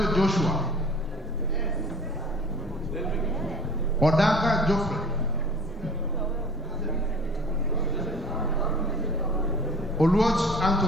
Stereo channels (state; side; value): normal; both; correlation 0.46